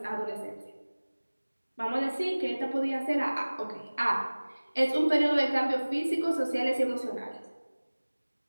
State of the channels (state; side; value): inverted; both; correlation -1.00